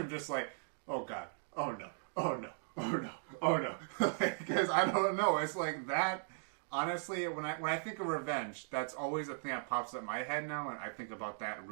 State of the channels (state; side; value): silent; left; digital silence